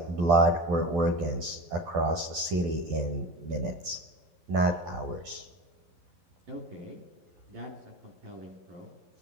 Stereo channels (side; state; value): left; late; 12 ms